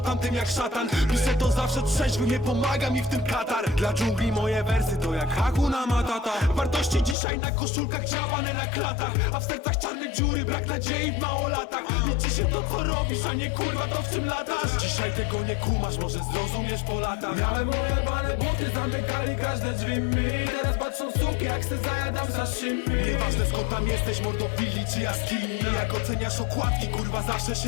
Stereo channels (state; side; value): drops out; right; at 7.2 s